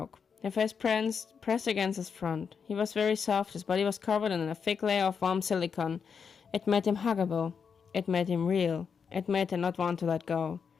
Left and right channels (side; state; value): right; quieter; 6.3 dB